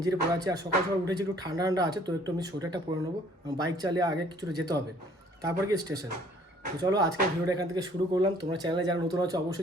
পরে আছি। আর সকাল সকাল উঠেছি, একটু ঠান্ডা ঠান্ডা আছে, তো একটু আমি সোয়েটারটা পরে নেবো। বাইক চালিয়ে আগে কিছুটা যেতে হবে, তারপর কি স্টেশন। তো চলো আজকের ভিডিওটা এখান থেকে শুরু করলাম। তোমরা চ্যানেলে যারা নতুন আছে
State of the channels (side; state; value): both; normal; correlation 0.58